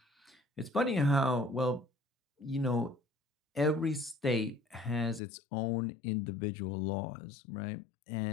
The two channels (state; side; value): drops out; right; at 5.2 s